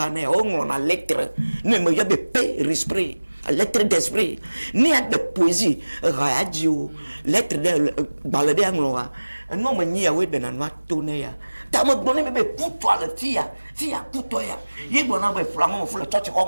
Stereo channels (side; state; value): both; inverted; correlation -1.00